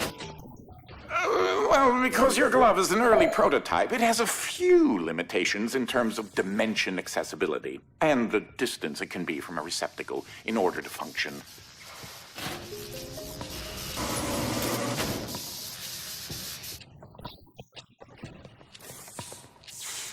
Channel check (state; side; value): identical; both; correlation 1.00